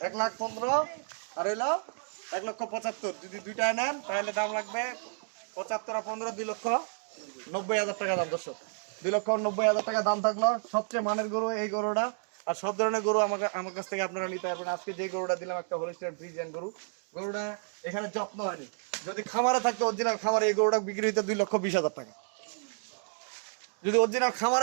1,15,000 আর হইলো 1,75,000। যদি দুইটায় নেন তাহলে দাম লাগবে 75 আর 15 2,90,000 টাকা দাম। দর্শক 2,90,000 টাকা দাম থাকলো। সবচেয়ে মানের গরু এই গরুটা। আর সব ধরনের গরু আমার কাছ থেকে আপনারা নিতে পারবেন। আজকে যে গরুটা দিলাম একটা হলিস্টিয়ান ফ্রিজিয়ান গরু, গরুটা এখানে যত্ন হয়নি। যদি খামারে থাকতো অরিজিনাল খামারে এই গরুটা বিক্রি হইতো 2,20,000 টাকা। যদি অরিজিনাল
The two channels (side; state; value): left; silent; 57 dB below the other